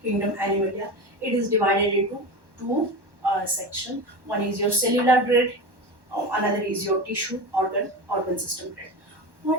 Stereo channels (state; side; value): late; left; 1.1 ms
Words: Animalia. It is divided into two sections. One is your cellular grade, another is your tissue organ system grade.